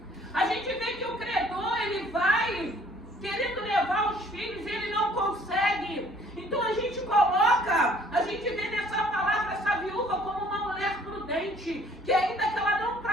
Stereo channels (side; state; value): both; normal; correlation 0.58